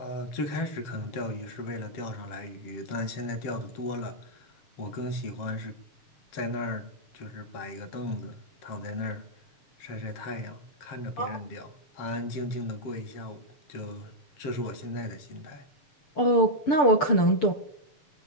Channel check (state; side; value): late; right; 6.9 ms